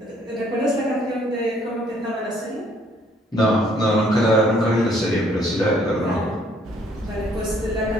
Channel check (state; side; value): normal; both; correlation 0.64